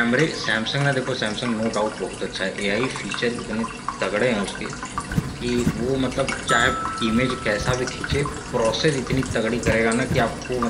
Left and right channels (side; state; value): both; identical; correlation 1.00